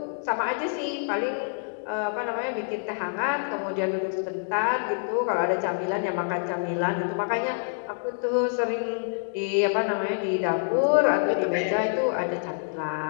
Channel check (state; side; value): silent; right; digital silence